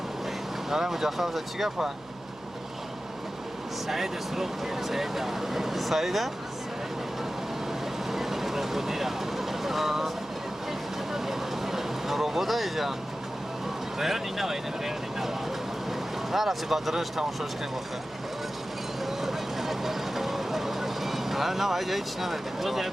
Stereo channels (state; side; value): noise; left; hum, 25 dB below the sound